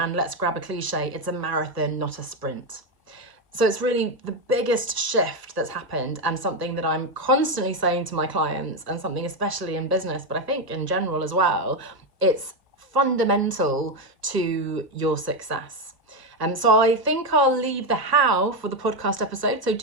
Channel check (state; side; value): late; left; 1.2 ms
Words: and let's grab a cliche, it's a marathon, not a sprint. So it's really the biggest shift that's happened, and something that I'm constantly saying to my clients, and something especially in business, but I think in general as well, it's fundamental to your success. So I think I'll leave the how for the podcast episode. So